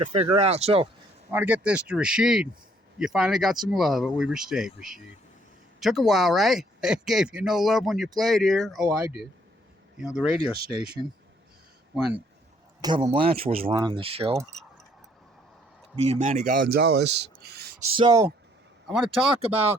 figure out. So I want to get this to Rashid. You finally got some love at Weber State, Rashid. Took a while, right? They gave you no love when you played here. Oh, I did. You know, the radio station, when D Blanch was running the show, me and Manny Gonzalez. So I want to talk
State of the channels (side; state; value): both; normal; correlation 0.64